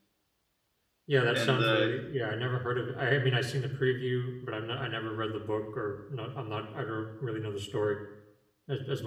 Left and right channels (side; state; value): both; identical; correlation 1.00